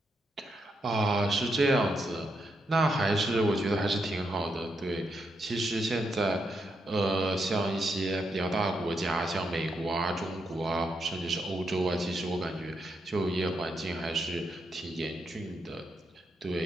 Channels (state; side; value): normal; both; correlation 0.81